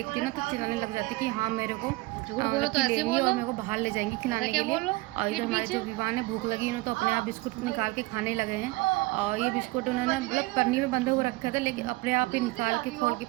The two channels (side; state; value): left; quieter; 21.9 dB